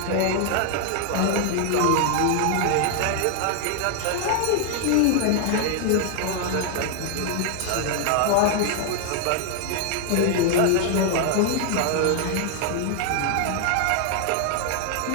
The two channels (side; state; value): both; different; correlation 0.00